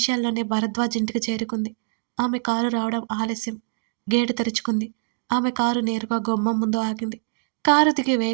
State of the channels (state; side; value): silent; left; digital silence